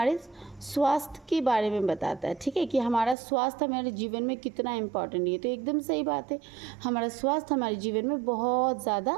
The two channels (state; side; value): drops out; left; at 3.2 s